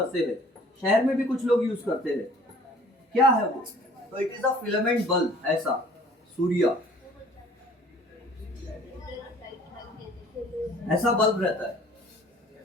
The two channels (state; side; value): normal; both; correlation 0.52